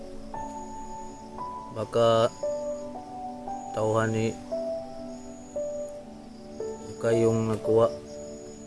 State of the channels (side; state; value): both; identical; correlation 1.00